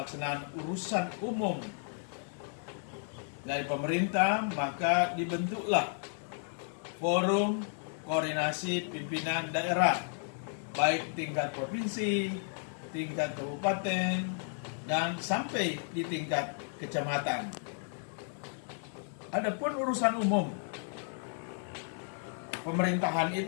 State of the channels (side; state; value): right; silent; 56 dB below the other